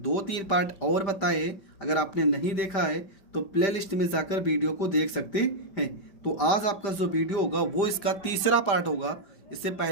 2-3 पार्ट और बताए, अगर आपने नहीं देखा है तो प्लेलिस्ट में जाकर वीडियो को देख सकते हैं। तो आज आपका जो वीडियो होगा वो इसका तीसरा पार्ट होगा। इससे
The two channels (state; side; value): late; right; 5.1 ms